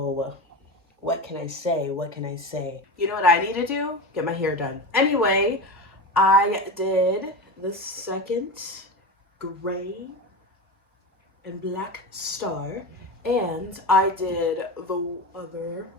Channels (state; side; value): normal; both; correlation 0.24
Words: what can I say? What can I say? You know what I need to do? Get my hair done. Anyway, I did the second gray and black star, and I did the other,